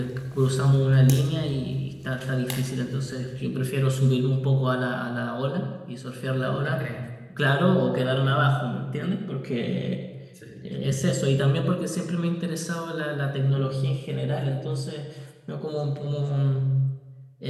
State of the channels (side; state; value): both; identical; correlation 1.00